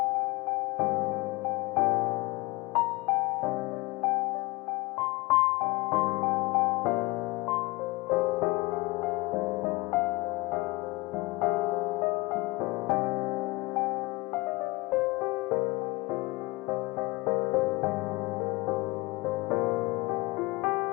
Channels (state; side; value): quieter; right; 22.7 dB